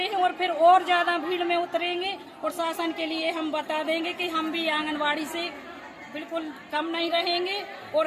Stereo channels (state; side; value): identical; both; correlation 1.00